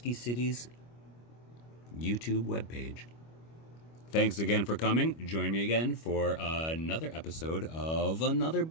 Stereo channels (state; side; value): late; right; 25 ms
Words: City's YouTube webpage. Thanks again for coming. Join me again for another episode of another